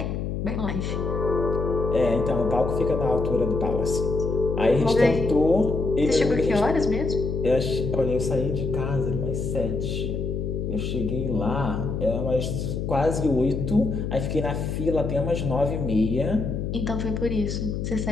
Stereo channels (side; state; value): left; noise; hum, 3 dB below the sound